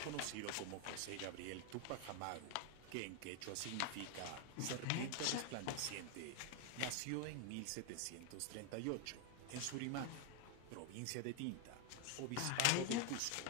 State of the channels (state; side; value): different; both; correlation 0.01